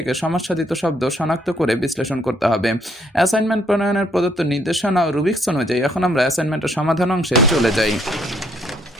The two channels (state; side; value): normal; both; correlation 0.68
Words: সমাস সাধিত শব্দ শনাক্ত করে বিশ্লেষণ করতে হবে। অ্যাসাইনমেন্ট প্রণয়নের প্রদত্ত নির্দেশনা ও রুবিক্স অনুযায়ী এখন আমরা অ্যাসাইনমেন্টের সমাধান অংশে চলে যাই।